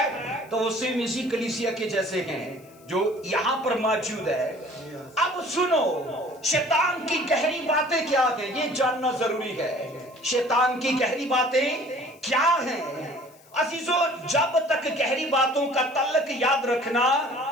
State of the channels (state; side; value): noise; left; hiss, 28 dB below the sound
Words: تو وہ سیم اسی کلیسیا کے جیسے ہیں جو یہاں پر موجود ہے. اب سنو شیطان کی گہری باتیں کیا ہیں یہ جاننا ضروری ہے. شیطان کی گہری باتیں کیا ہیں عزیزو؟ جب تک گہری باتوں کا تعلق یاد رکھنا